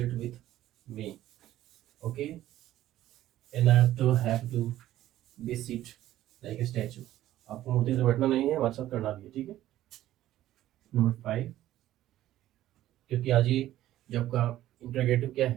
with me. Okay. And I have to be sit like a statue. आपको मूर्ति से बैठना नहीं है, हमारे साथ करना भी है, ठीक है। नंबर 5, क्योंकि आज ये जब का इंटरोगेटिव क्या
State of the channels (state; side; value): quieter; left; 13.8 dB